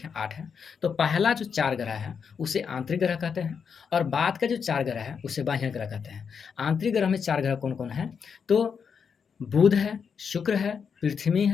8 है। तो पहला जो 4 ग्रह है उसे आंतरिक ग्रह कहते हैं और बाद का जो 4 ग्रह है उसे बाह्य ग्रह कहते हैं। आंतरिक ग्रह में 4 ग्रह कौन कौन है? तो बुध है, शुक्र है, पृथ्वी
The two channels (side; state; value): right; quieter; 6.4 dB